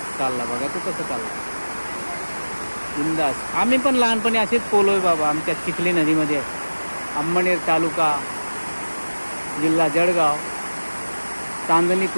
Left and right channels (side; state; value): both; inverted; correlation -1.00